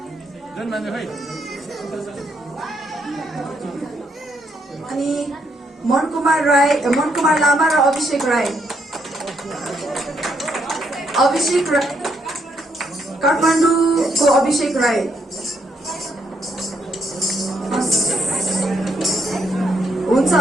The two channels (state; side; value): normal; both; correlation 0.74